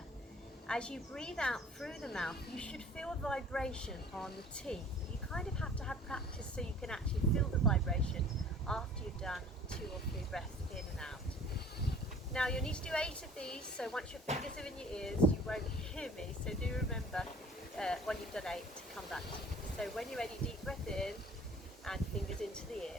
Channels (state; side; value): normal; both; correlation 0.49